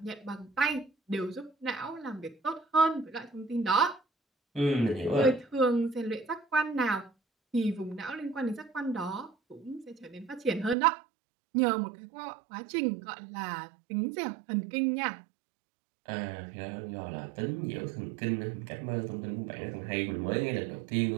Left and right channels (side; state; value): left; drops out; at 10.8 s